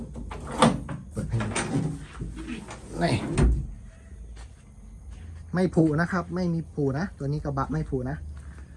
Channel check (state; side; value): identical; both; correlation 1.00